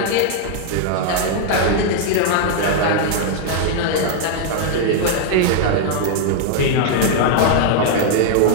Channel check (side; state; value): both; different; correlation 0.00